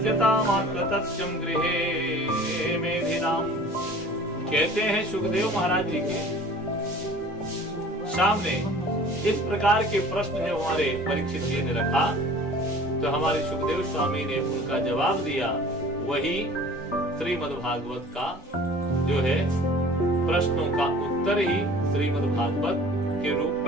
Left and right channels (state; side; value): normal; both; correlation 0.46